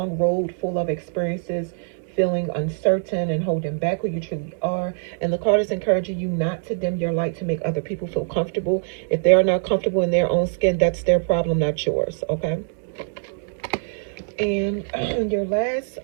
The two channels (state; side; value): silent; left; digital silence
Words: road full of experiences, feeling uncertain and holding back who you truly are. And the card is encouraging you not to dim your light to make other people feel comfortable. If they are not comfortable in their own skin, that's their problem, not yours, okay? And your last